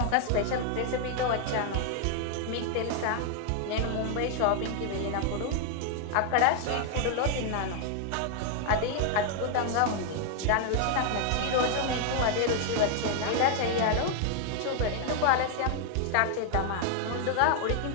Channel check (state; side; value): different; both; correlation 0.00